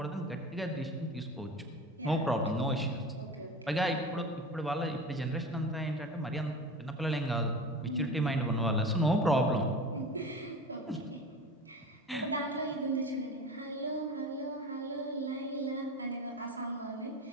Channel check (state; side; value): normal; both; correlation 0.33